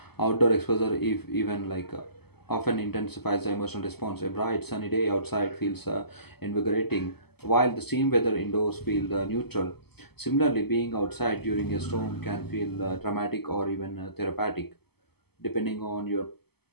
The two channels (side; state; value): right; late; 0.97 ms